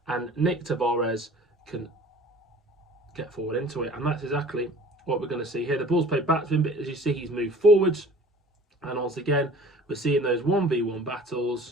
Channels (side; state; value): both; normal; correlation 0.47